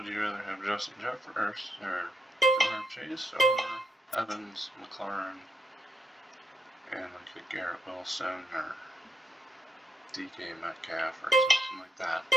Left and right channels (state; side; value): normal; both; correlation 0.78